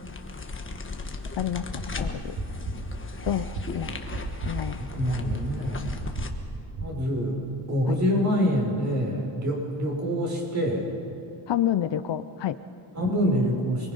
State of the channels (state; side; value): normal; both; correlation 0.39